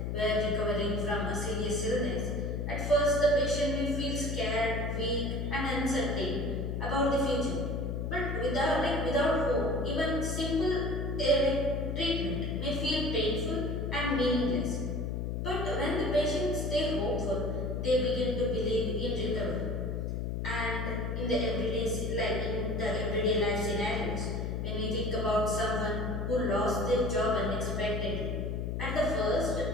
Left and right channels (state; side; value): noise; left; hum, 2 dB below the sound